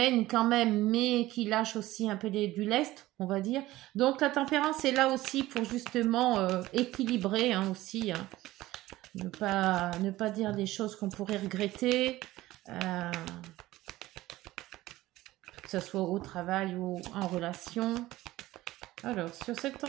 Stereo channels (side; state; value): left; quieter; 16.9 dB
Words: quand même, mais qui lâche aussi un peu du lest, on va dire. Donc la tempérance est là aussi pour justement équilibrer, hein, aussi. Hein. Ne pas dire des choses qu'on pourrait regretter. Que ce soit au travail ou en relation. Alors, sur cette